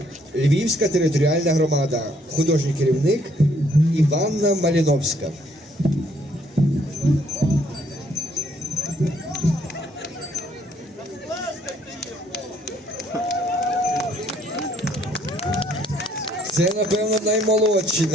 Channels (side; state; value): both; normal; correlation 0.66